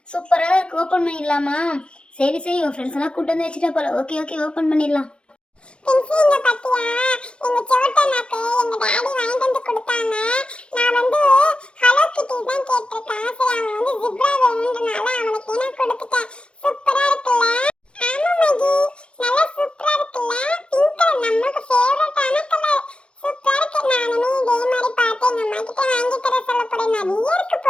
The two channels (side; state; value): right; late; 0.057 ms